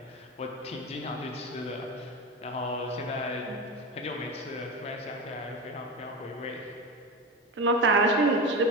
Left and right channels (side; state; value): both; normal; correlation 0.22